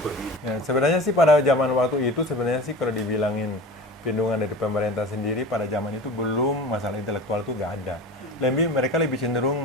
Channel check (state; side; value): normal; both; correlation 0.35